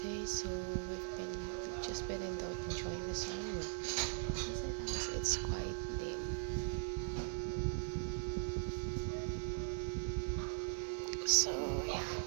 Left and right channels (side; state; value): left; silent; digital silence